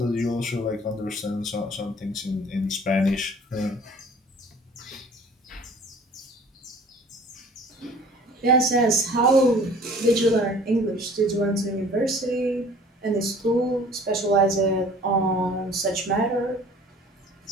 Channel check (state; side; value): normal; both; correlation 0.49